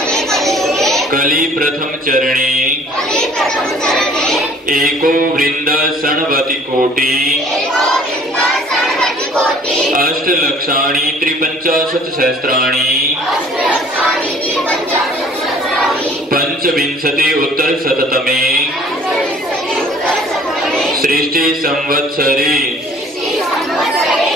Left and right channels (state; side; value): normal; both; correlation 0.53